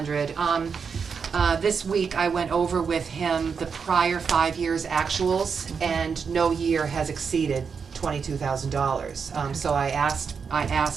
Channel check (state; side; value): quieter; left; 6.0 dB